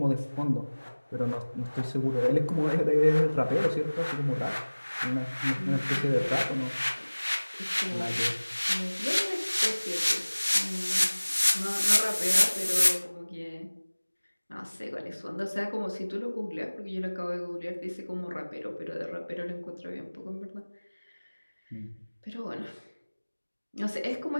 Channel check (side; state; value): both; inverted; correlation -1.00